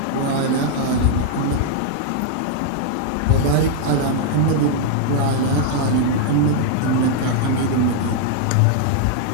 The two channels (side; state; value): both; different; correlation -0.01